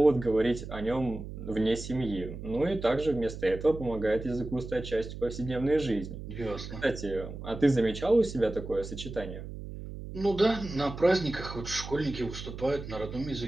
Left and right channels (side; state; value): right; noise; hum, 10 dB below the sound